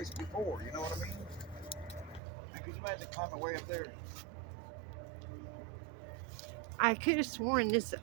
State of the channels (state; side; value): drops out; left; at 2.2 s